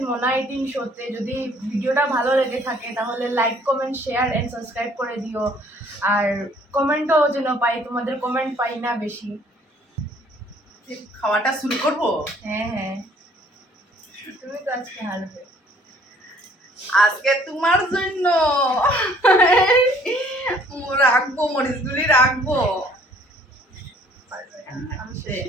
মোনা 18 শোতে। যদি ভিডিওটা ভালো লেগে থাকে তাহলে like, comment, share and subscribe করে দিও। আর কমেন্টও যেন পাই, তোমাদের কমেন্ট পাই না বেশি। খাওয়াটা শুরু করব। হ্যাঁ, তুমি তো আজকে হারবে। আজকে তোমার জন্য রাখবো, মরিচগুলি রাখবো।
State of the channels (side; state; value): both; normal; correlation 0.59